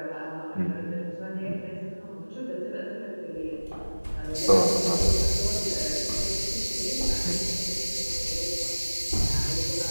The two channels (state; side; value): inverted; both; correlation -1.00